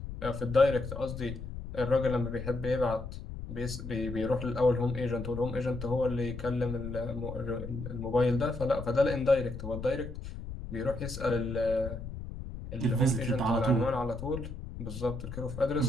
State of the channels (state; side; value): noise; left; rumble, 9 dB below the sound